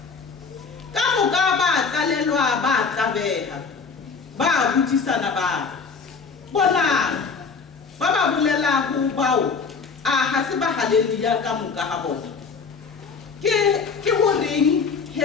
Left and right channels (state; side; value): quieter; right; 5.2 dB